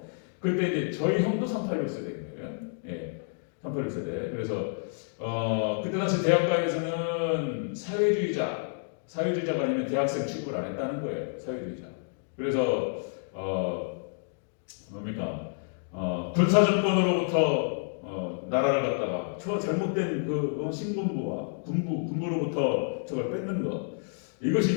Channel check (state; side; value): silent; right; digital silence